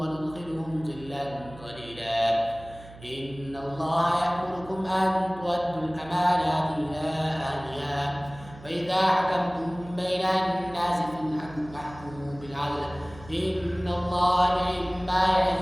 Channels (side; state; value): right; noise; hum, 19 dB below the sound